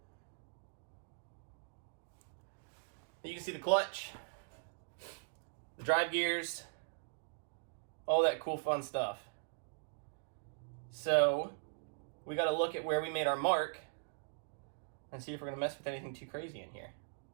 You can see the clutch, the drive gears, all that cool fun stuff. So we got to look at where we made our mark and see if we're going to mess with anything too crazy in here.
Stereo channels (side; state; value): left; silent; digital silence